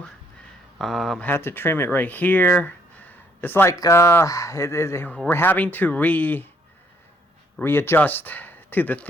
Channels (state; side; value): normal; both; correlation 0.67